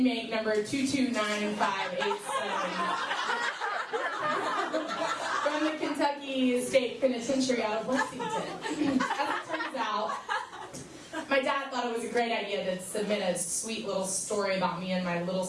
number 2295587 from the Kentucky State Penitentiary out of Lexington. As it turns out, my dad thought it was a great idea to submit a sweet little story about me and my little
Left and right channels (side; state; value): both; identical; correlation 1.00